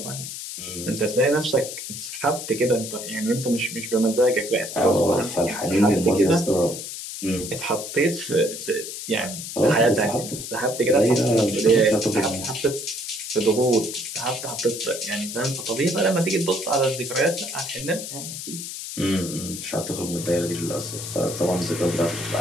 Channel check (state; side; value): noise; left; hiss, 8 dB below the sound